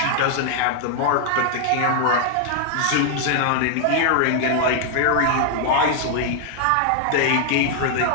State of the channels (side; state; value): both; different; correlation 0.00